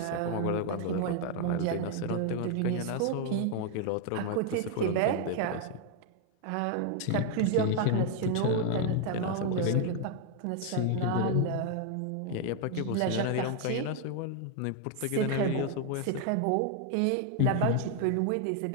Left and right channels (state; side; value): different; both; correlation 0.00